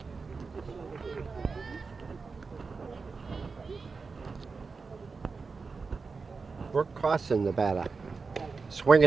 Brooke Carson, the batter. Swing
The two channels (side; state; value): left; quieter; 4.6 dB